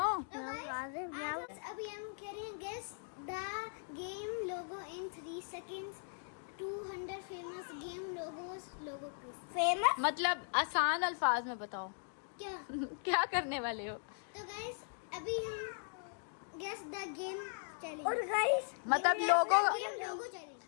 अभी हम करेंगे guess the game logo in 3 seconds. 200 famous game logo famous मतलब आसान अल्फाज में बताओ क्या क्या करने वाले हो। तो गाइस अभी हम गेस द गेम चैलेंज और गाइस मतलब लोगो चैलेंज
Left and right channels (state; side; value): silent; right; digital silence